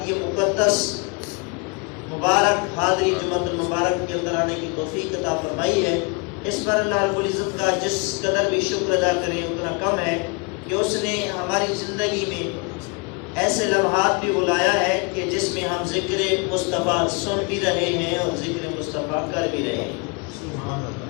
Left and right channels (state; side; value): quieter; right; 31.0 dB